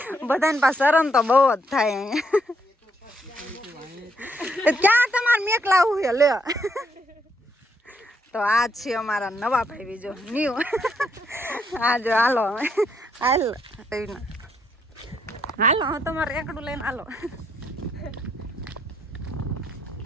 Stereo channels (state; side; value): normal; both; correlation 0.74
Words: બધાને પાસે શરમ તો બહુ જ થાય અહીંયા ક્યાં તમારે મેક લાવવું છે લે તો આ છે અમારા નવા ભાઈ બીજો ન્યુ આ જો હાલો હાલો હું તમારે રેકડું લઈને હાલો